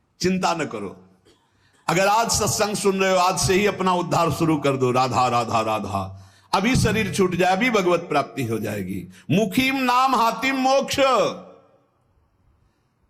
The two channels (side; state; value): both; identical; correlation 1.00